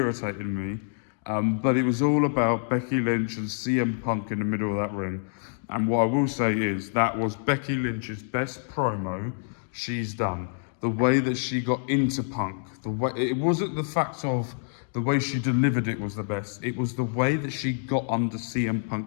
me. But it was all about Becky Lynch and CM Punk in the middle of that ring. And what I will say is that was Becky Lynch's best promo she's done. The way that she got into Punk, it wasn't the fact of the way she delivered it was the best. It was the way that she got under CM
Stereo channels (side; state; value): right; silent; digital silence